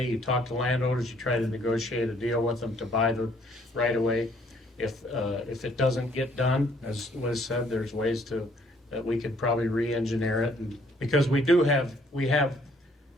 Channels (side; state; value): both; normal; correlation 0.63